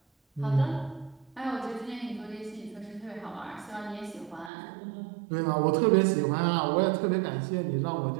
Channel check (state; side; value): drops out; left; at 4.5 s